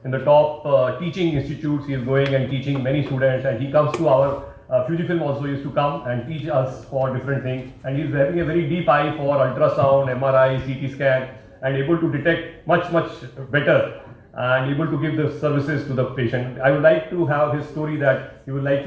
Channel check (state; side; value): identical; both; correlation 1.00